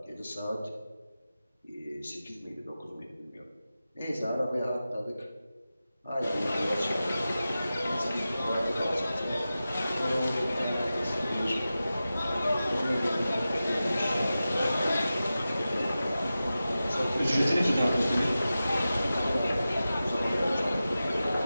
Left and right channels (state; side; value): inverted; both; correlation -0.94